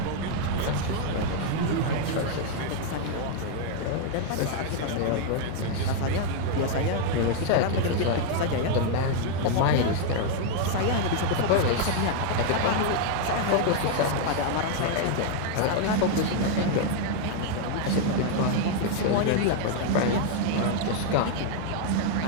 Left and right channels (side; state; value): both; different; correlation 0.00